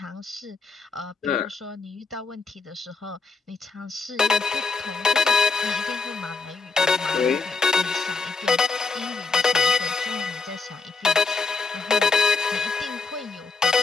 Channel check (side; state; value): right; quieter; 4.3 dB